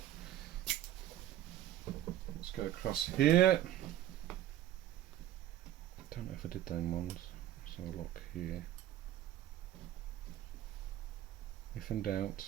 Let's go across here. Don't know if I did them ones. Let's have a look here. If in doubt,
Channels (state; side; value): quieter; left; 12.7 dB